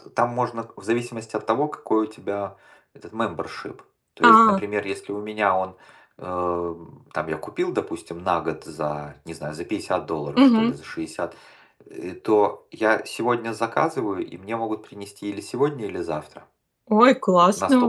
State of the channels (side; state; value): both; identical; correlation 1.00